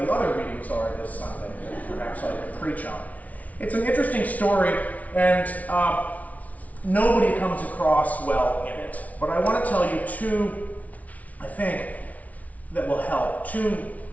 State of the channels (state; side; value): late; right; 0.070 ms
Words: the other readings are this Sunday that perhaps I could preach on. It's an interesting story, and nobody comes across well in it. But I want to tell you two, I think, that will help. Two